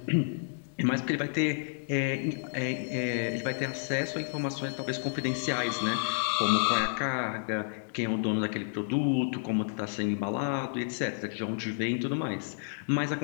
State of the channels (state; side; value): silent; right; digital silence